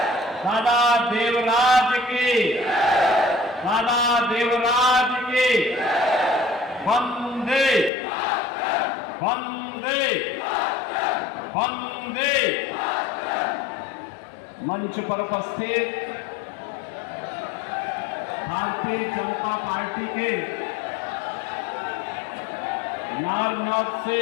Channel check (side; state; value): right; drops out; at 7.9 s